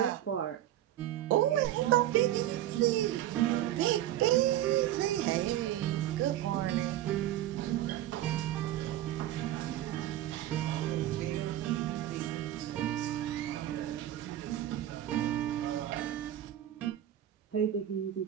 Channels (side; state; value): left; quieter; 12.9 dB